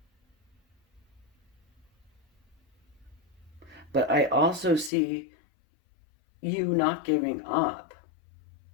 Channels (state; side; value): drops out; right; at 4.9 s